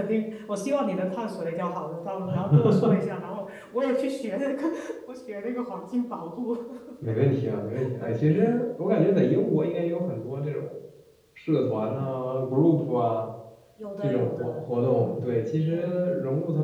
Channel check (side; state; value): both; identical; correlation 1.00